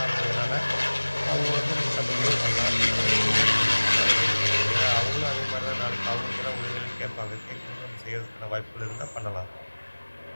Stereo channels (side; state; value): both; inverted; correlation -1.00